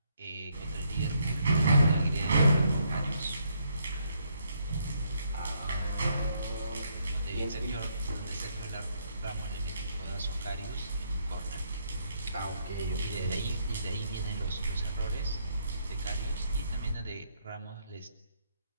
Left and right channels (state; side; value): inverted; both; correlation -0.73